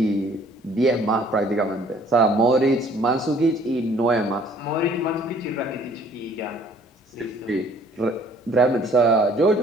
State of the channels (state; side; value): normal; both; correlation 0.57